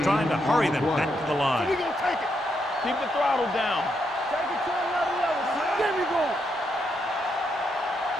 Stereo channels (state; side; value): normal; both; correlation 0.79